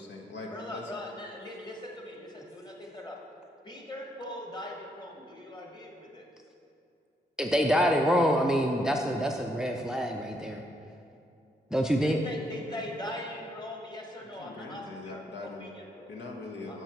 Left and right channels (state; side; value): normal; both; correlation 0.75